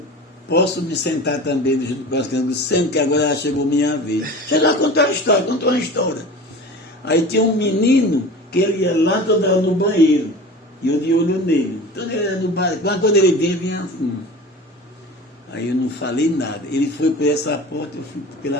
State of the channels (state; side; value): normal; both; correlation 0.36